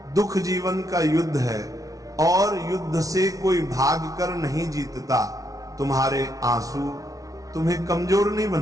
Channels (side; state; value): left; late; 0.17 ms